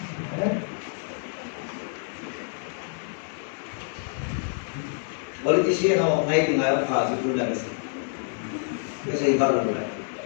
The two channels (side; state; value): right; silent; 60 dB below the other